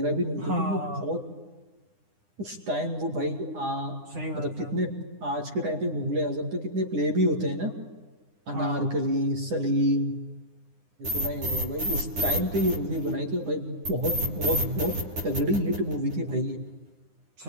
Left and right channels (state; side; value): late; left; 9.8 ms